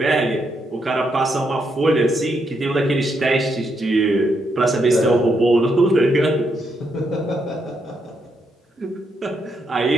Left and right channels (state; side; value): normal; both; correlation 0.79